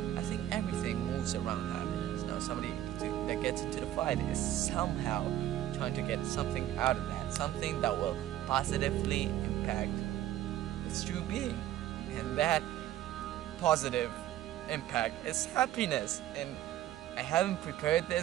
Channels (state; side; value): quieter; left; 12.9 dB